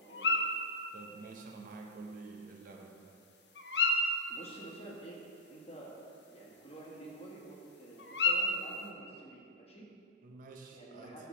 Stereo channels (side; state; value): both; normal; correlation -0.10